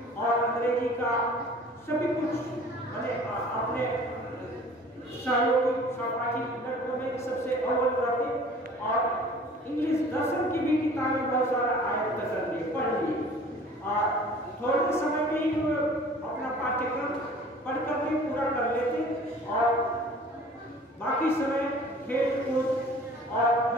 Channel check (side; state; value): both; normal; correlation 0.47